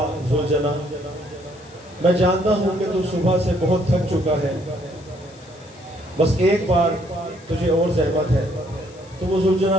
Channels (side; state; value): left; noise; hiss, 26 dB below the sound